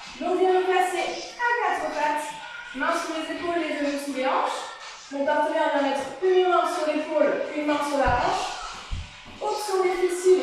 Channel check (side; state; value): both; identical; correlation 1.00